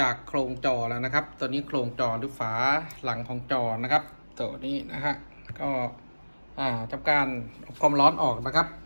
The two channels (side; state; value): both; inverted; correlation -1.00